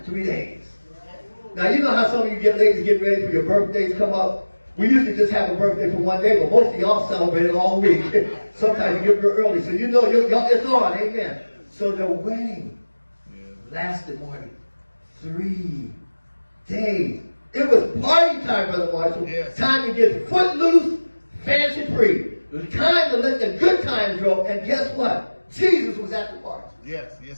3 days. Now, you know how some of you ladies get ready for your birthdays come up? We usually just have a birthday for 1 day, but most of y'all celebrate it all week. Sometimes you get here early, so you know it's on, amen. So the wedding lasted more than 3 days. It was party time, Brother Marshall. Yes. Time to get footloose, fancy free. It was time to let the good times roll, and guess what? Jesus was at the party. Yes,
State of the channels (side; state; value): both; inverted; correlation -1.00